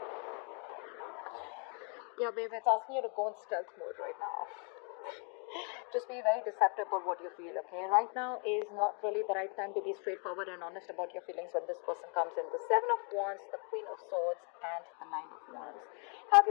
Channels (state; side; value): quieter; right; 37.4 dB